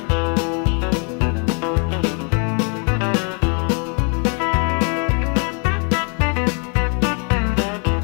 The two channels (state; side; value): quieter; right; 39.0 dB